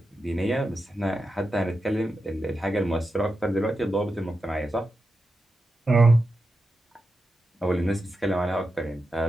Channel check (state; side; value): normal; both; correlation 0.89